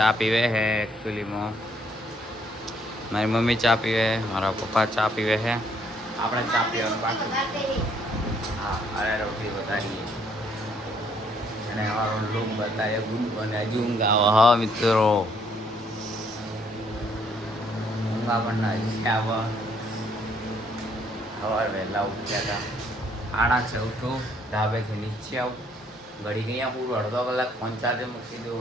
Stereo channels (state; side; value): normal; both; correlation 0.67